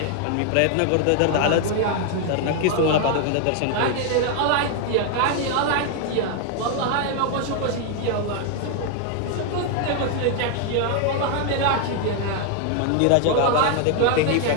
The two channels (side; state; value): both; different; correlation 0.00